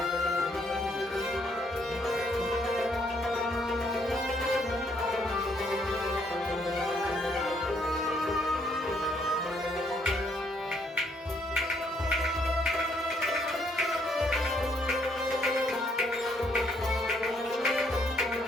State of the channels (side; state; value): both; normal; correlation 0.70